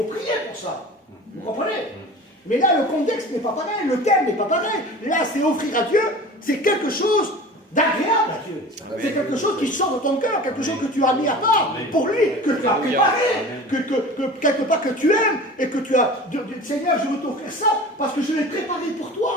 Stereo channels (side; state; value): both; normal; correlation 0.38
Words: prier pour ça. Vous comprenez? Mais là, le contexte n'est pas pareil, le thème n'est pas pareil. Là, c'est offrir à Dieu, c'est quelque chose d'agréable à Dieu. C'est quelque chose qui sort de ton cœur, quelque chose que tu as mis à part pour lui, que tu as préparé, que quelque part que tu aimes, et que tu as... Seigneur, je veux t'offrir ça, parce que je l'ai préparé pour